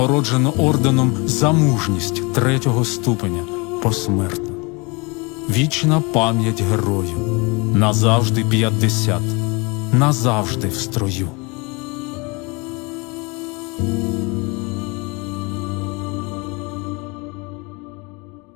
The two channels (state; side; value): quieter; right; 28.5 dB